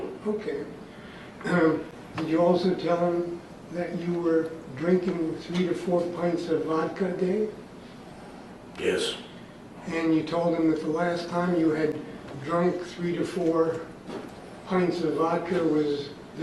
Okay. Did you also tell him that you were drinking 3 to 4 pints of vodka a day? Yes. And you told him that the last time you had drunk 3 to 4 pints of vodka was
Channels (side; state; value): both; identical; correlation 1.00